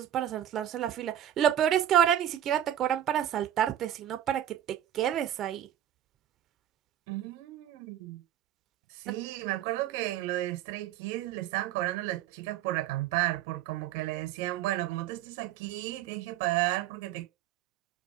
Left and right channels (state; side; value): quieter; left; 11.2 dB